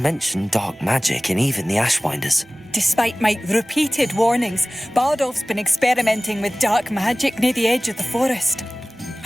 dark magic and even the Ashwinders. Despite my repeated warnings, Bardolph's been experimenting with dark magic near the edge of the forest.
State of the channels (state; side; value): normal; both; correlation 0.98